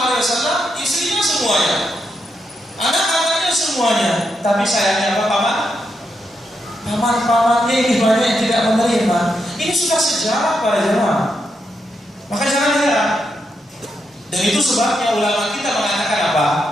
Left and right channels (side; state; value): both; normal; correlation 0.82